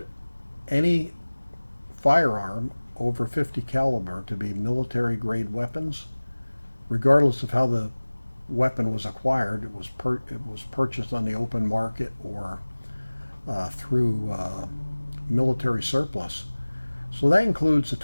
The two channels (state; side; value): inverted; both; correlation -1.00